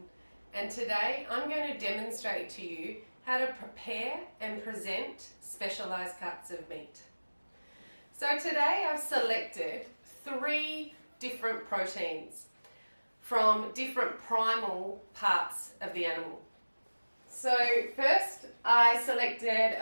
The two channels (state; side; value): inverted; both; correlation -1.00